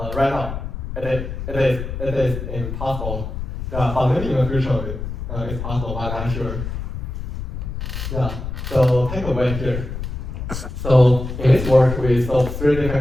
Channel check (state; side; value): noise; left; rumble, 6 dB below the sound